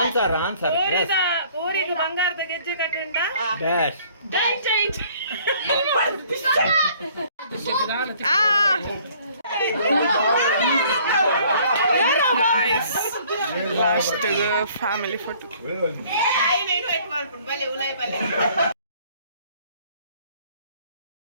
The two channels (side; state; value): both; inverted; correlation -0.57